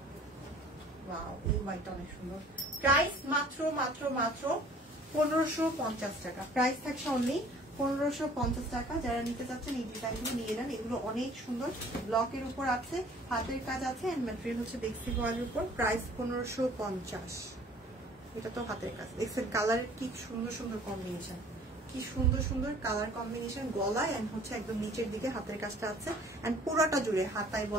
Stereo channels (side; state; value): both; normal; correlation 0.52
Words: ওয়াও এই হোয়াইটটা অনেক সুন্দর। প্রাইস মাত্র 1550 টাকা। প্রাইস থাকছে অনলি 1550 টাকা। যারা নিতে চাচ্ছেন এই ডিজাইনগুলো নিয়ে নেন, এগুলো অনেক সুন্দর, ব্লকের উপর আছে, হাতের কাজ আছে এন্ড ম্যাটেরিয়াল হচ্ছে বেক্সি ভয়েলের উপর। প্রাইস 1550। এটা তো হাতের কাজ, দেখছেন কালারের কি সুন্দর সুন্দর কম্বিনেশন, কি সুন্দর সুন্দর কালার কম্বিনেশন। গলায় এন্ড হচ্ছে একদম নিচের দিকে হাতের কাজটা আছে এন্ড পুরোটা জুড়ে, হাতায়